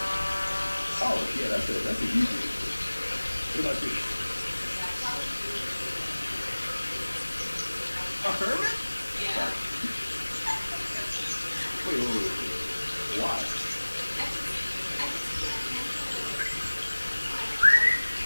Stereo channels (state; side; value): inverted; both; correlation -1.00